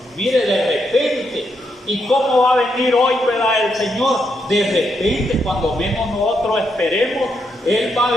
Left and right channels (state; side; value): normal; both; correlation 0.80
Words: mire, de repente. ¿Y cómo va a venir hoy, ¿verdad? El Señor, de repente, cuando menos nosotros esperemos, Él va a